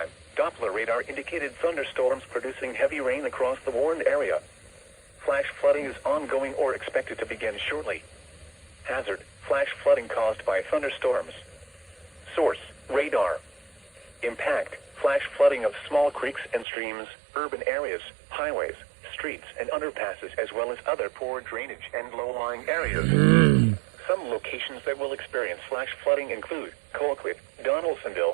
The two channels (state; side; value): drops out; left; at 16.7 s